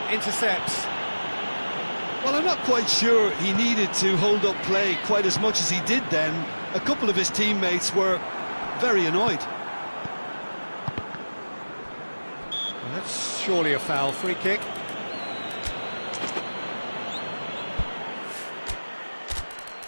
intercepts. Well, I'm not quite sure he needed to hold up play quite as much as he did then. A couple of his teammates were very annoyed. Well, that's surely a foul. Free kick.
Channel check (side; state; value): both; inverted; correlation -1.00